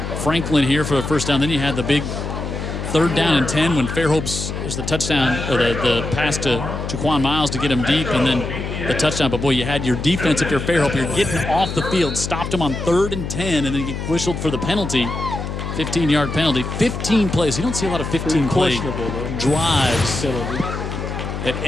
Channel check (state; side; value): noise; left; hum, 5 dB below the sound